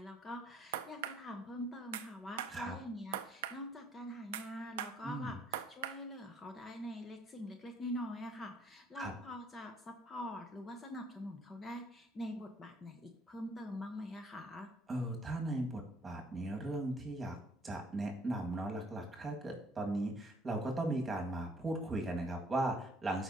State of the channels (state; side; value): normal; both; correlation 0.63